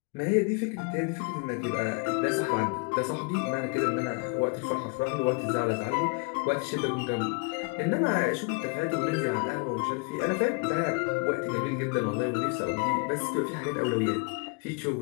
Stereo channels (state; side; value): quieter; right; 33.0 dB